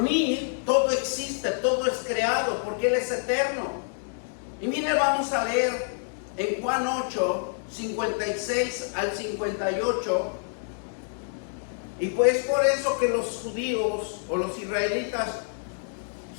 mí todo existe, todo es creado, porque Él es eterno. Y mire, vamos a leer en Juan 8, 56 al 58. Y pues por eso que los judíos o los israelitas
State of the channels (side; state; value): right; silent; digital silence